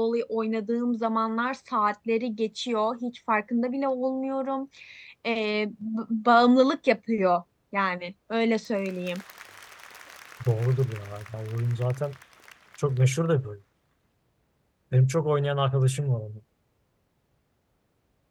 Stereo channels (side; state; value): both; identical; correlation 1.00